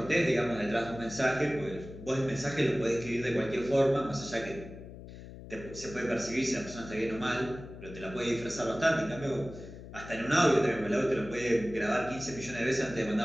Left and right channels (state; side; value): noise; left; hum, 14 dB below the sound